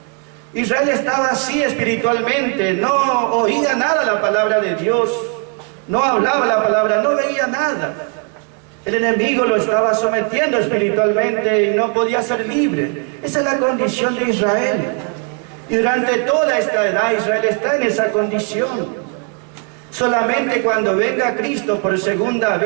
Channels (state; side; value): quieter; left; 38.4 dB